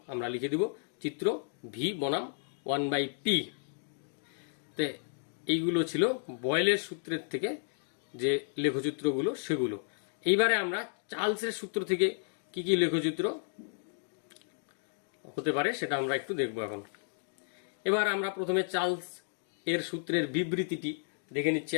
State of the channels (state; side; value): silent; right; digital silence